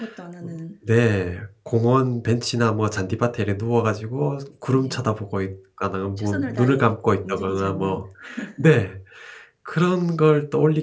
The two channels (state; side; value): identical; both; correlation 1.00